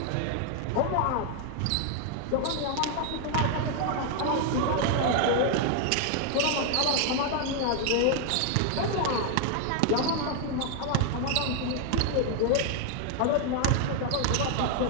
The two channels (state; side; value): different; both; correlation 0.00